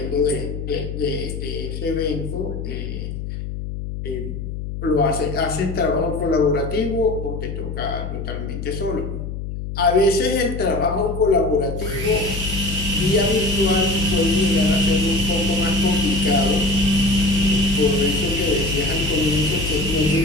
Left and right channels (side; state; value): left; noise; hum, 6 dB below the sound